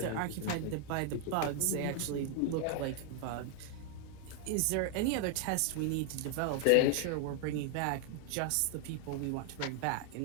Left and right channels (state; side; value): different; both; correlation 0.00